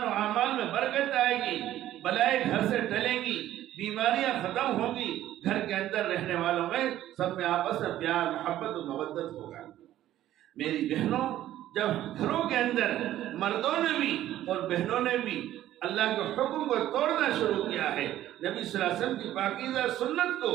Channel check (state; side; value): quieter; left; 13.1 dB